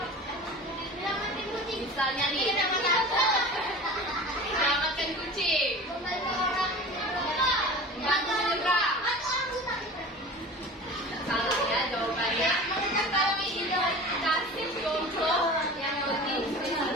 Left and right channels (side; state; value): both; normal; correlation 0.36